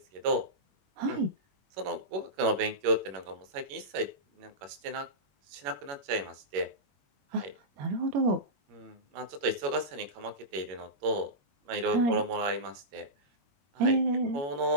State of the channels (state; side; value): late; left; 21 ms